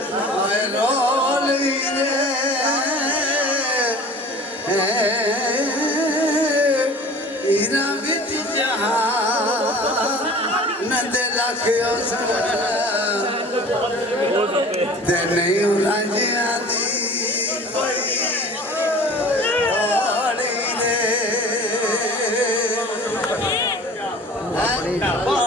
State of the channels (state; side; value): normal; both; correlation 0.43